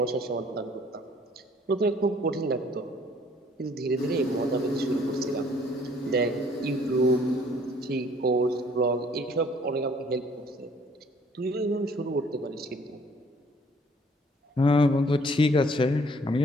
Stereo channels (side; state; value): both; normal; correlation 0.59